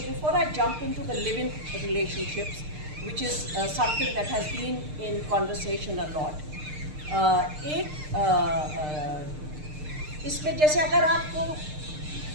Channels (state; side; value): late; left; 6.6 ms